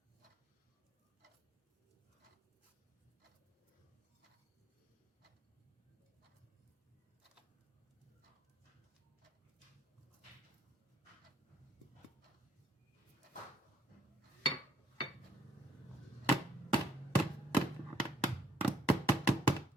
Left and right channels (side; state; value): both; normal; correlation 0.66